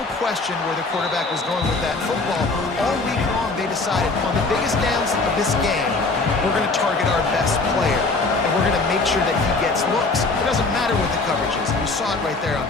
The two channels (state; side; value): quieter; right; 3.6 dB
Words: question where the quarterback was going with that football. All week long, they decided on the biggest downs of this game, we're going to target our best player, and we're going to make sure that he gets looks. It doesn't matter what the coverage is. You saw it right there on